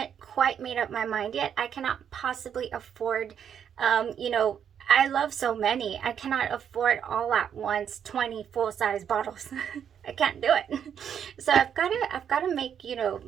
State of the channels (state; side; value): quieter; left; 8.4 dB